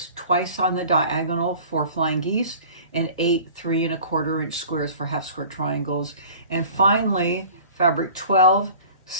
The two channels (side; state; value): both; inverted; correlation -0.45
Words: twice on the diagonal for flying geese, and 8 3¼ inch squares for half square triangles. And finally, fabric 12,